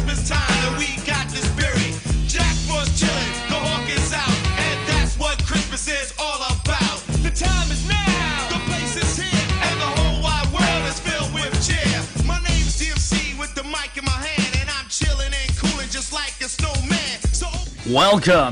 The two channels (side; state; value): both; identical; correlation 1.00